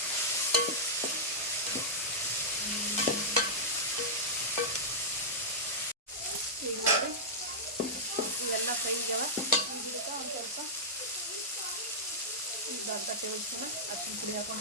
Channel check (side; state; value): both; normal; correlation -0.10